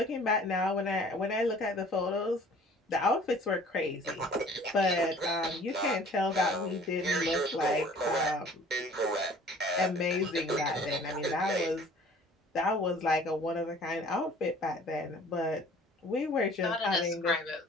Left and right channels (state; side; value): normal; both; correlation 0.50